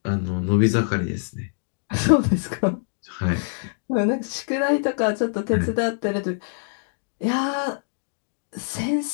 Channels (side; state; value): right; silent; digital silence